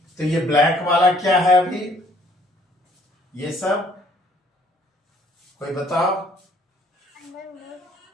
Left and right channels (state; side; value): normal; both; correlation 0.60